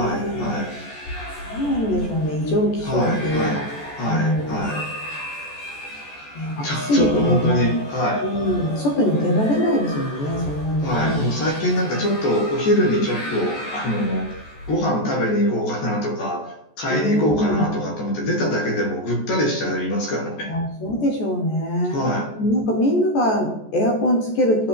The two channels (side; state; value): right; late; 14 ms